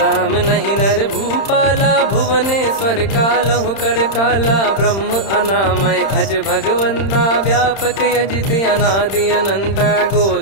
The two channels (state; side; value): late; right; 31 ms